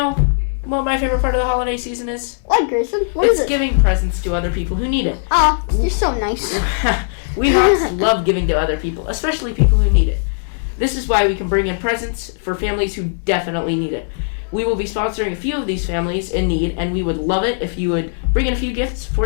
what my favorite part of the holiday season is? What, Grayson? What is It's it? giving presents to other people who need it. You're so nice. We Hawks love giving to other people, especially people who need it. This is why we can bring in presents for families who definitely need it. We will be sponsoring a few of these families in need, and we would love it if you would bring in a few gifts for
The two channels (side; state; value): right; silent; digital silence